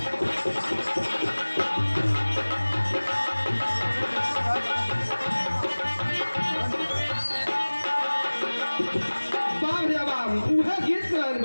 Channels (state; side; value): inverted; both; correlation -1.00